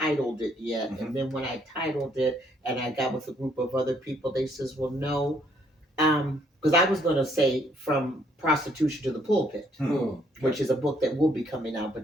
it yet. And then when I titled it and I got with a group of other people, they says, well, no, because I was going to say From Prostitution to the Pulpit, which is a book that will be coming out,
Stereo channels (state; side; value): normal; both; correlation 0.67